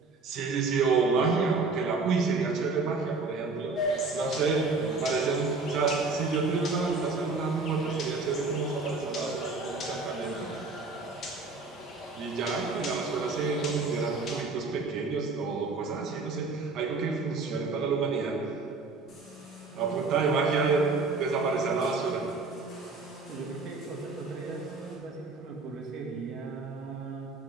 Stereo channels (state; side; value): quieter; left; 3.9 dB